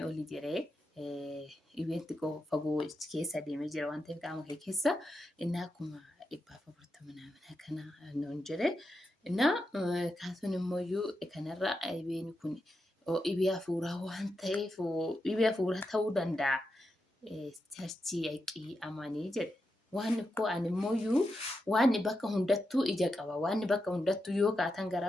oli jedhee dhibeen xiqqoo fagoo keessa deemee jira waan ta'eef qaama kee keessa innaa 140 ምናምን akkana nuun jedhe innaa kaasuun immoo kanarra dhibeen kun dhibee hafuuraa waan ta'eef dhibee hafuuraa ta'uu danda'a charchii yaqii amanii jedhe. Waan koo ani immoo waan bakka hundattuu ija qaba. Waan bakka hundattuu yoo kaatan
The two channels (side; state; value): both; normal; correlation 0.87